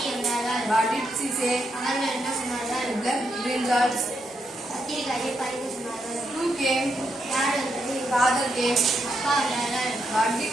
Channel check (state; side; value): normal; both; correlation 0.81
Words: வந்தார்கள். What did she say? அவர்கள் என்ன சொன்னார்கள்? Left brinjals. கத்திரிக்காயை பறிக்க சொன்னார்கள். Who came? யார் வந்தது? Father came. அப்பா வந்தார்கள்.